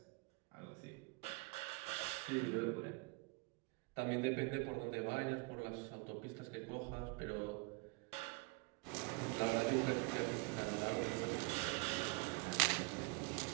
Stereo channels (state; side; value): quieter; left; 28.1 dB